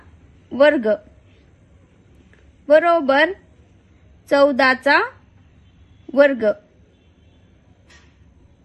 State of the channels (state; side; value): identical; both; correlation 1.00